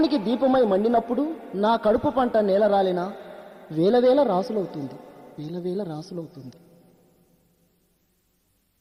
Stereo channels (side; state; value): both; identical; correlation 1.00